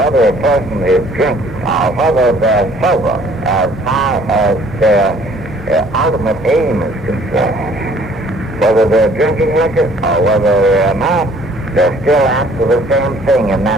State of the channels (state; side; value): normal; both; correlation 0.57